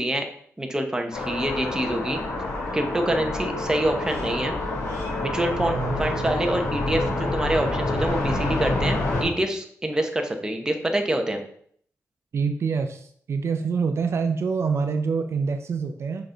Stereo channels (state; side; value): normal; both; correlation 0.83